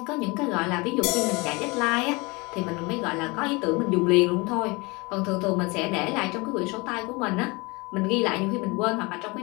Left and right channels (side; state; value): right; quieter; 26.0 dB